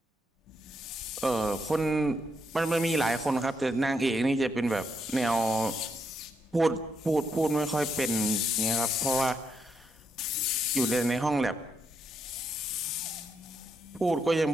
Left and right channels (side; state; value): both; normal; correlation 0.79